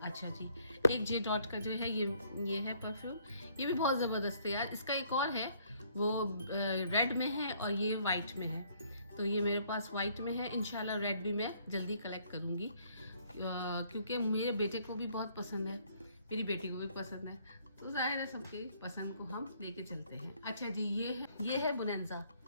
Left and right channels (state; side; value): inverted; both; correlation -0.65